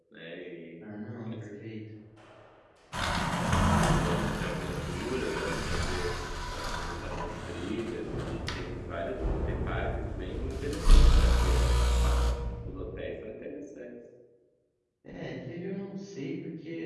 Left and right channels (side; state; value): both; identical; correlation 1.00